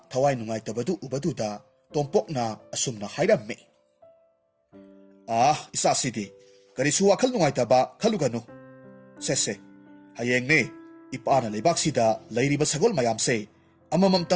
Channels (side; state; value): both; identical; correlation 1.00